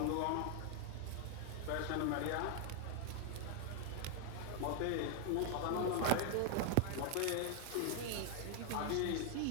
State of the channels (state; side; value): different; both; correlation 0.00